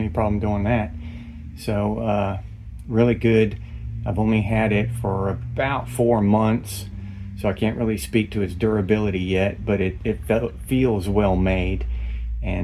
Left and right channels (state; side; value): identical; both; correlation 1.00